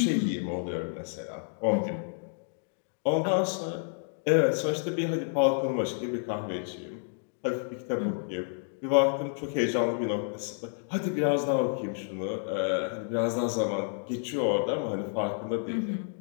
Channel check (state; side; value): silent; right; 58 dB below the other